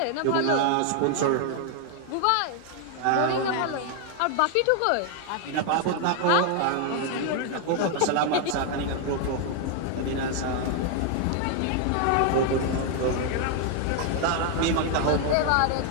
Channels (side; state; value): both; different; correlation 0.00